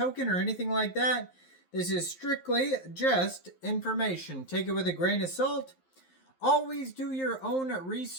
or anything like that. This is strictly just information. Take it with a grain of salt. Always do your own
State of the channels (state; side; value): late; right; 11 ms